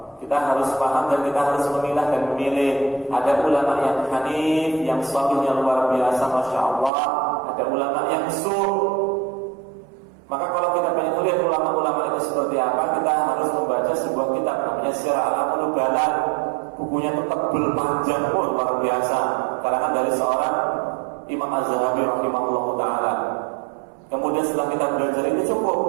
kita harus paham dan kita harus memilah dan memilih. Ada ulama yang hanif, yang salih, yang luar biasa, Masya Allah. Ada ulama yang Maka kalau kita pengen melihat ulama-ulama itu seperti apa, kita harus membaca sebuah kitab namanya Syiar A'lamul Nubala. Bukunya itu tebal, panjang pun luar biasa, karangan dari seorang Imam Az-Zahabi rahimahullahu ta'ala. Kemudian setelah kita belajar itu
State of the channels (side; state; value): left; drops out; at 6.9 s